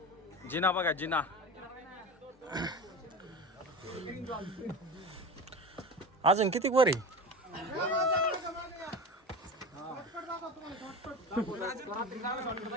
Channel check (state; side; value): normal; both; correlation 0.30